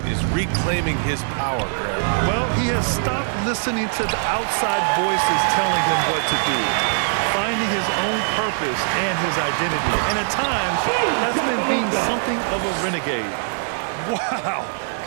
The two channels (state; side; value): silent; left; 58 dB below the other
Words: is reclaiming his power, Greg. Well, he has stopped listening to the outside voices telling him what to do, finding his own purpose and his identity. And at times, that's meant being something of a renegade. Wow.